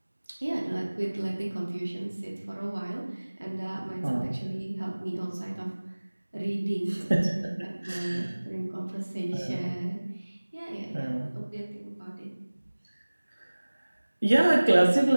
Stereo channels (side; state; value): both; inverted; correlation -1.00